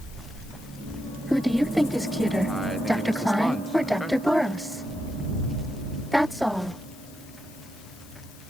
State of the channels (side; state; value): left; noise; hiss, 22 dB below the sound